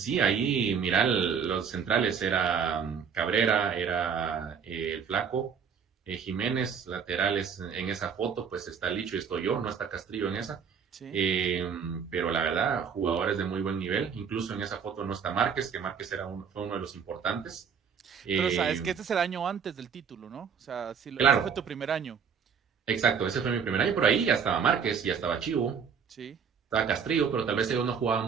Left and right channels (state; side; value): quieter; left; 6.7 dB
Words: sí, ahí, mira, los centrales era Cabrera, era el Flaco, Jiménez, laterales en esa foto, pues está Licho y estoy yo, no está Castrillo en esa. Sí. Eh, pero la verdad, jugadores de muy buen nivel. Incluso en esa foto no está Márquez, que Márquez fue uno de los importantes. Pero sabes Eh, que este es el año antes del título, ¿no? O sea, sí, ese fue tu claro, primer año. exacto, ese fue mi primer año, por ahí ya estaba Márquez, ya estaba Chivo, Sí. estaba Castrillo, pero tal vez ellos no jugaban